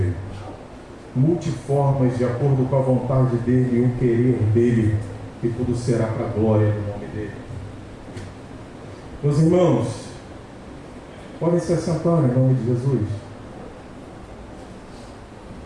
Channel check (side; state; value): both; identical; correlation 1.00